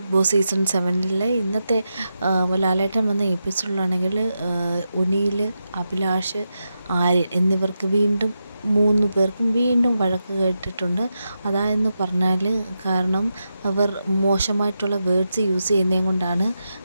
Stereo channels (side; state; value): both; inverted; correlation -0.88